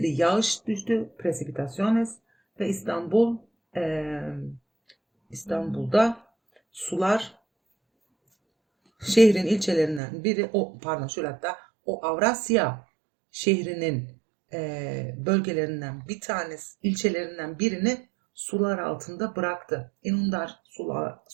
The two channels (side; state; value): left; drops out; at 10.0 s